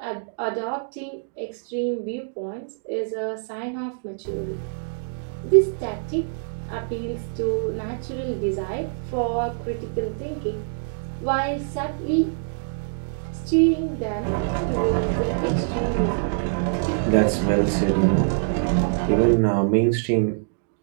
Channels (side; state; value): left; silent; digital silence